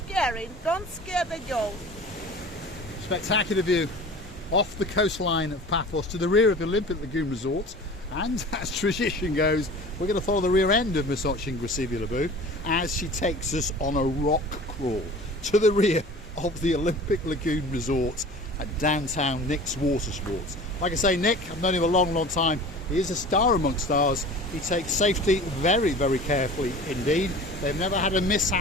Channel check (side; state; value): both; normal; correlation 0.40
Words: Don't scare the girls. Spectacular view off the coastline of Paphos to the rear of the Olympic Lagoon Resort. And as tradition goes, we're going to follow the rear end of Miss Gracivia as she takes us on a rock crawl to the rear of the Olympic Lagoon Resort at downtown Nick's Water Sports. Like I say, Nick, I've known him a long, long time. He is a star amongst stars. He takes safety very, very carefully indeed. They've never had a